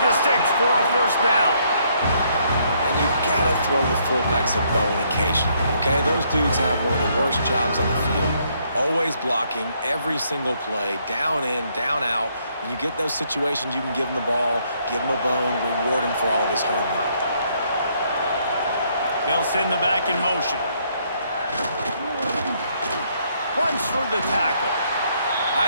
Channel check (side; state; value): both; inverted; correlation -0.70